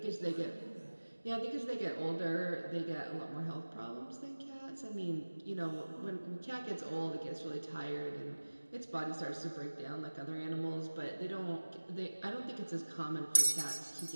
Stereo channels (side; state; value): both; inverted; correlation -1.00